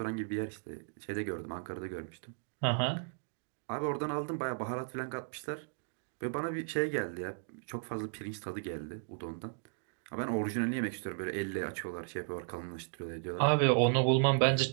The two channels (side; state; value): left; silent; digital silence